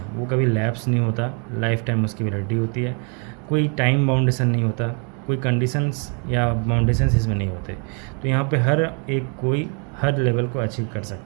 वो कभी लैप्स नहीं होता, लाइफ टाइम उसकी वैलिडिटी होती है। कोई टाइम बाउंडेशन नहीं होता, कोई कंडीशंस या बाउंडेशंस इसमें नहीं होते। तो यहाँ पे हर एक कोई हर लेवल को अचीव कर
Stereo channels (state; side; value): quieter; left; 37.5 dB